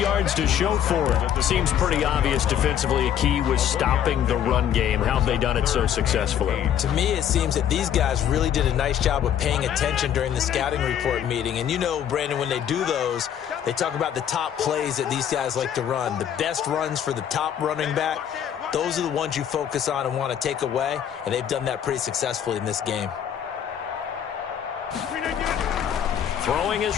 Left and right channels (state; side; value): quieter; right; 9.5 dB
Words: to show for it. Seems pretty obvious defensively a key was stopping the run game. How have they done it so successfully? To me, it seems that these guys really did a nice job of paying attention during the scouting report meeting. And you know, Brandon, when they do those, they talk about the top plays that these guys like to run. The best runs for the top running back, those are the ones you focus on and want to take away. And they've done that pretty successfully in this game. Throwing